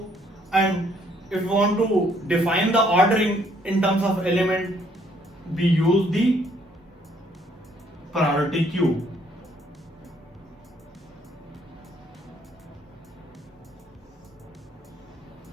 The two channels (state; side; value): normal; both; correlation 0.66